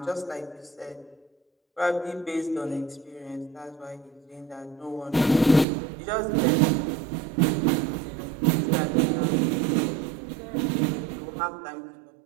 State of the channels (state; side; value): drops out; left; at 5.7 s